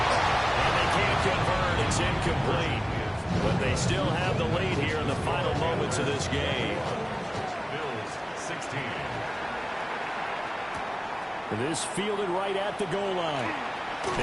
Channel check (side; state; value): both; identical; correlation 1.00